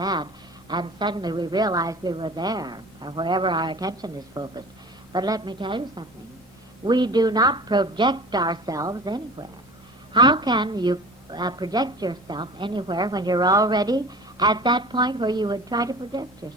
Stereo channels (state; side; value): normal; both; correlation 0.40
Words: and suddenly we realized we were there, or wherever our attention is focused. But let me tell you something. We do not project ourselves anywhere. How can you project yourself anywhere when you're already at that point where you would try to project